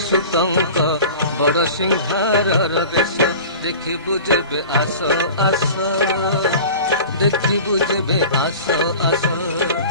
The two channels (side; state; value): both; inverted; correlation -0.39